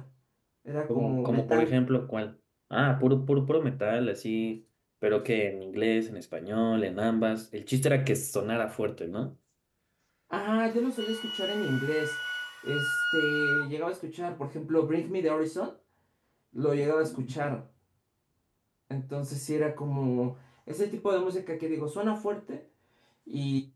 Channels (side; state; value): both; identical; correlation 1.00